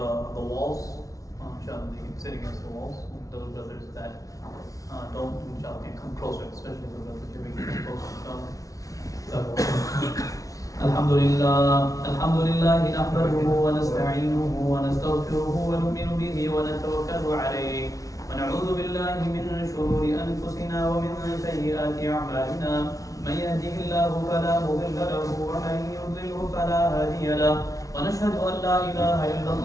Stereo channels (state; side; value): late; right; 0.17 ms